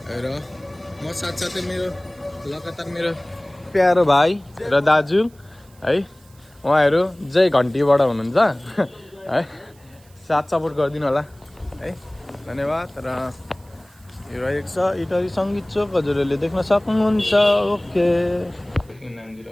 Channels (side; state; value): right; noise; hiss, 30 dB below the sound